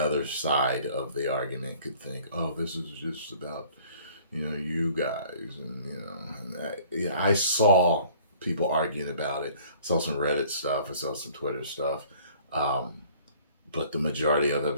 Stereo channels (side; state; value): both; inverted; correlation -0.53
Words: other side of the argument could think, oh, this is just about, you guys. And, I saw people arguing about it. I saw some Reddit stuff. I saw some Twitter stuff. But the majority of the